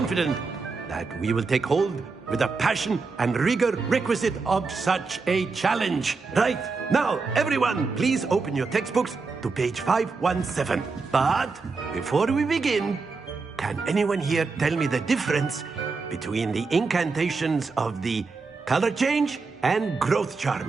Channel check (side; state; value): left; quieter; 4.3 dB